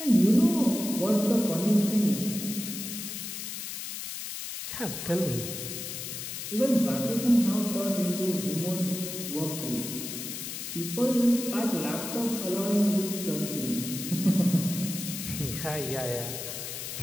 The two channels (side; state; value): left; noise; hiss, 7 dB below the sound